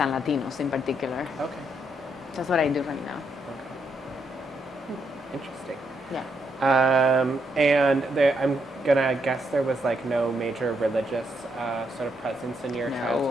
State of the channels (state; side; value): normal; both; correlation 0.78